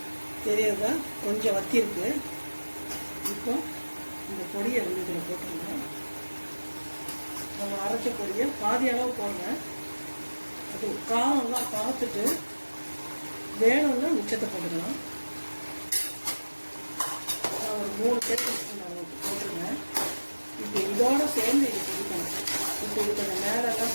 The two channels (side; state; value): both; inverted; correlation -1.00